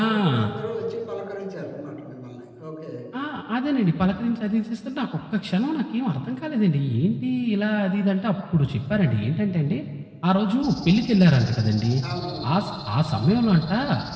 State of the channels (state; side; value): identical; both; correlation 1.00